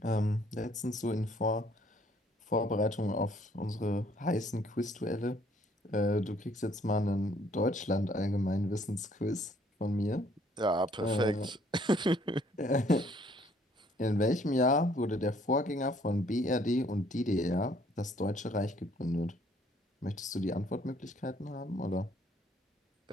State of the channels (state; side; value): normal; both; correlation 0.63